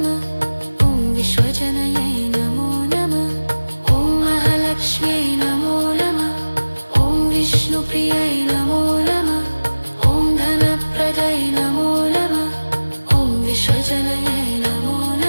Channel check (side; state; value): both; inverted; correlation -1.00